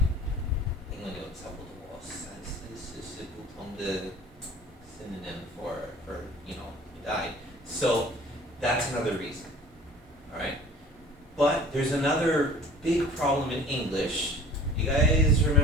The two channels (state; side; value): normal; both; correlation 0.46